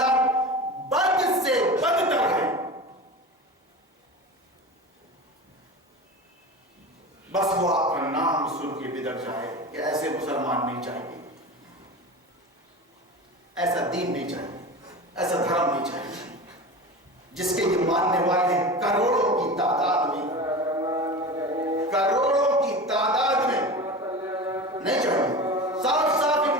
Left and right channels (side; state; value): both; normal; correlation 0.30